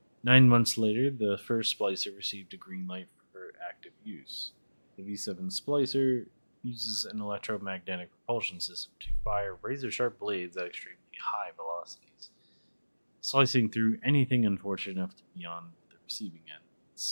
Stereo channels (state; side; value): inverted; both; correlation -1.00